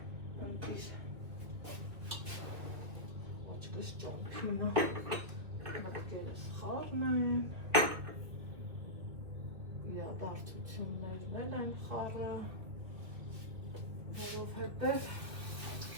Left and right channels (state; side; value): late; left; 2.6 ms